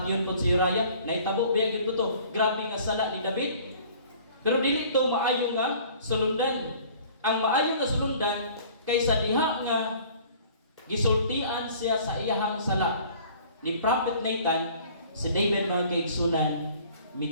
pod si Uriah. Naitabo biya gyud to. Grabe nga sala ni David. Pero dili to maayo nga sulundan. Ang maayo nga sulundan kaysa diha nga gisultian siya sa iyahang sala ni Prophet Nathan, si David mga kaigsunan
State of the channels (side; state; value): both; inverted; correlation -0.51